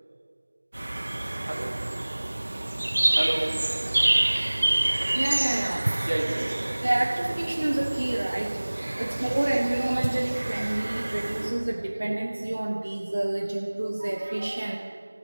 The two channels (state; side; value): inverted; both; correlation -1.00